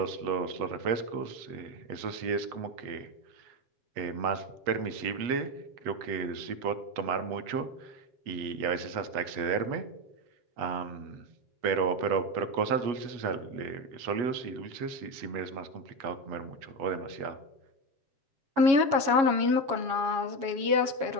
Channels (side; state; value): left; late; 7.3 ms